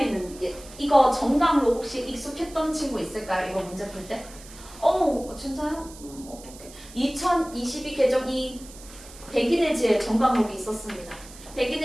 이거 정강로 혹시 익숙했던 친구 있을까요? 이거 문제 풀 때? 진짜요? 어떡해. 2022 개정 이 백인의 지혜 정강록이 있었습니다.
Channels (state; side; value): noise; right; hiss, 19 dB below the sound